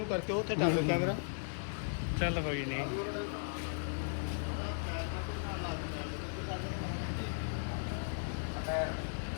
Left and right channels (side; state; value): right; silent; digital silence